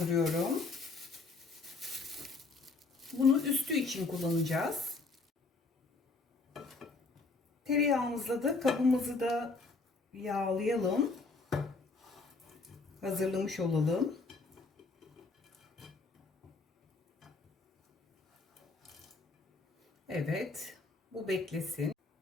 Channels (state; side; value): quieter; right; 3.8 dB